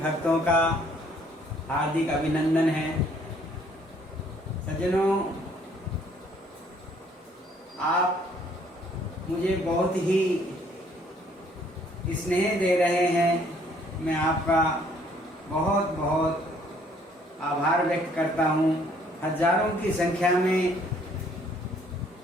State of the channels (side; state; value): both; normal; correlation 0.62